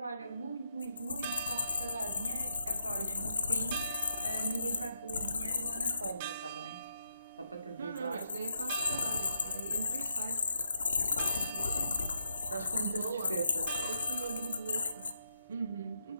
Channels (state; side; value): inverted; both; correlation -0.80